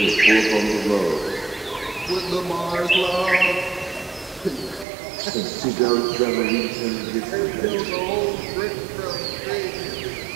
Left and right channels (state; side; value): drops out; left; at 4.9 s